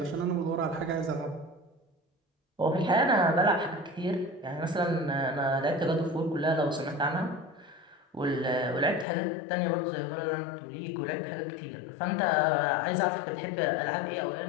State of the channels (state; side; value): drops out; right; at 9.1 s